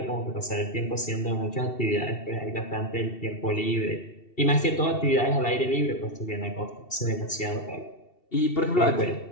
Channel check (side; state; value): right; late; 2.7 ms